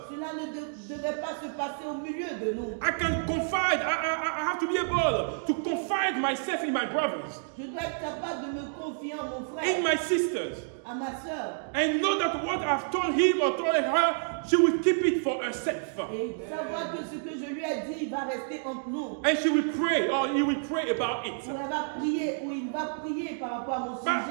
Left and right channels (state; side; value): silent; left; digital silence